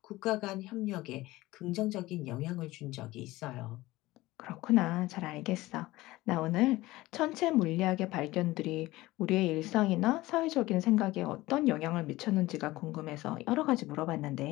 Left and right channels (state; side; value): quieter; right; 18.6 dB